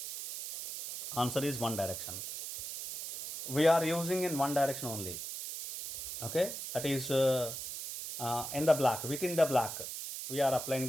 Answer is one direction. We are using in one direction only. Okay, that is in the block, within the block, we are applying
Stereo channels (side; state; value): right; noise; hiss, 7 dB below the sound